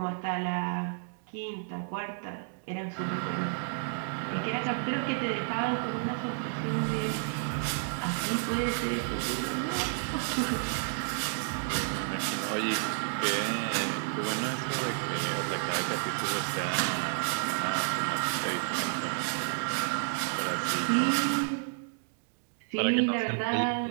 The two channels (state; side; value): silent; left; digital silence